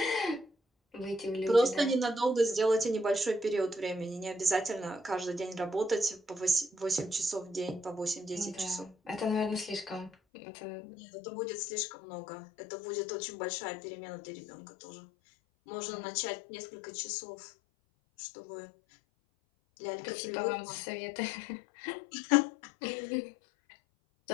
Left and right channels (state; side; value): drops out; right; at 10.1 s